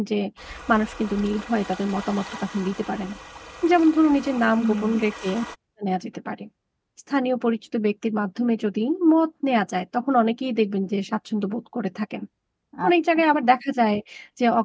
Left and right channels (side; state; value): both; identical; correlation 1.00